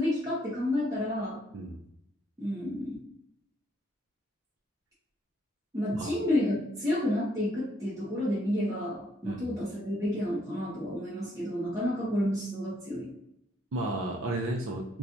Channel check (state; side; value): normal; both; correlation 0.70